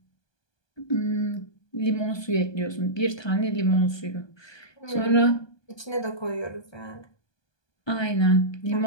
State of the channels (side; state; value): right; late; 1.2 ms